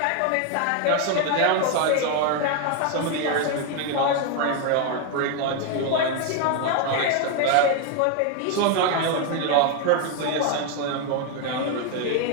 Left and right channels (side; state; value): both; different; correlation 0.01